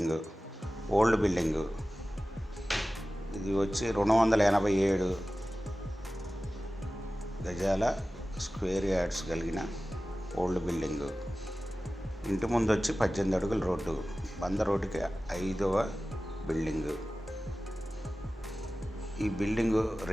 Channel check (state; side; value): normal; both; correlation 0.96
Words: ఓల్డ్ బిల్డింగు. ఇది వచ్చి 287 గజాల స్క్వేర్ యార్డ్స్ కలిగిన ఓల్డ్ బిల్డింగు. ఇంటి ముందు వచ్చి 18 అడుగుల రోడ్డు, బంద రోడ్డుకి 5వ బిల్డింగు. ఈ బిల్డింగు